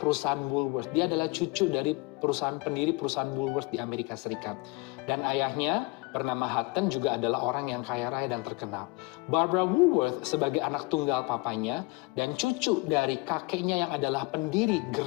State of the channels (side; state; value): right; quieter; 25.5 dB